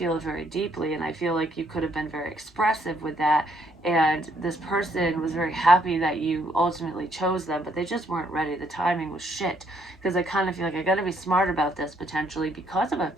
it very deeply, and I feel like you could have been very expressive with that, and this person was very happy that you ultimately chose them, but they just weren't ready. The timing was shit, because I kind of feel like I got to be smart about this potentially because of a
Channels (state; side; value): normal; both; correlation 0.69